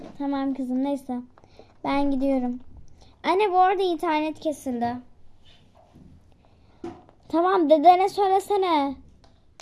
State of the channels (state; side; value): identical; both; correlation 1.00